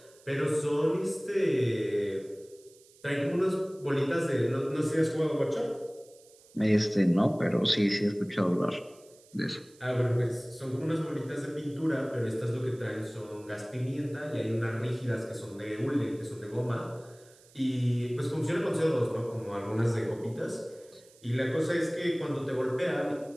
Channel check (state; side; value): noise; right; hiss, 27 dB below the sound